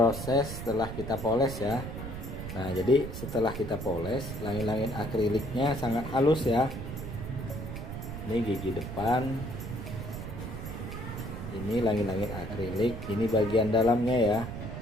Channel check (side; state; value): right; noise; rumble, 8 dB below the sound